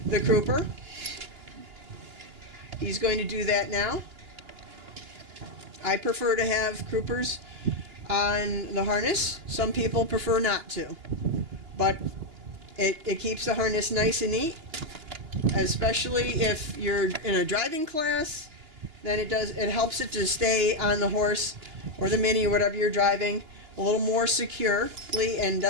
the crooper. He's going to do that now. I prefer to have croopers on the harness. Some people prefer not to. But it keeps the harness nice and neat, especially if you're in a driving class. Then it helps it to stay on the horse or the Mini or whatever you're driving a little more securely and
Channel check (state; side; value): late; left; 2.9 ms